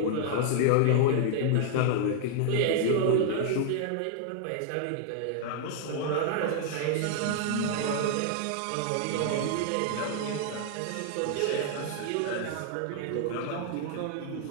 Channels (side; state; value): both; different; correlation 0.00